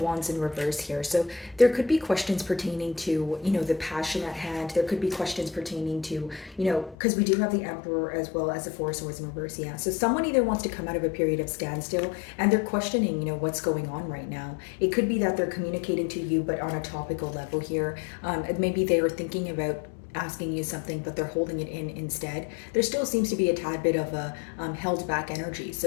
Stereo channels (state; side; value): drops out; right; at 7.0 s